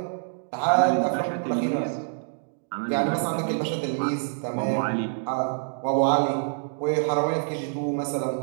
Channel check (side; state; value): left; silent; digital silence